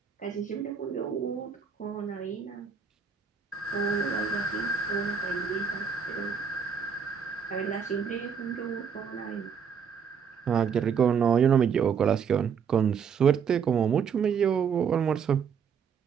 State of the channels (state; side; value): quieter; left; 6.7 dB